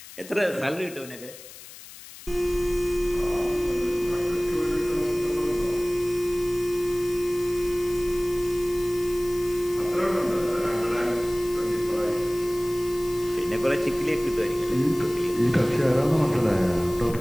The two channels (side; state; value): left; noise; hiss, 17 dB below the sound